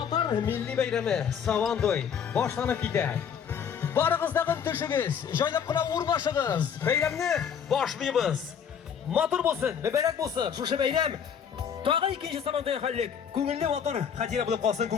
milliy bayrami Savantoy boshlanib ketadi. Barig'izdag'in tushingiz, joylab qilib o'rnashig'iz. Bayramni boshlaymiz. Motor bo'lsin, muborak bo'lsin. Shu bayram tog'a ikkinchi Savantoy xallik. Ko'ngilli motor xatira bo'lib qolsin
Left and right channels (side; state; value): right; quieter; 7.7 dB